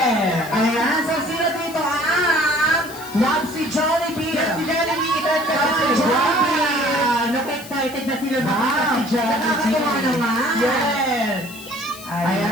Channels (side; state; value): left; noise; hiss, 16 dB below the sound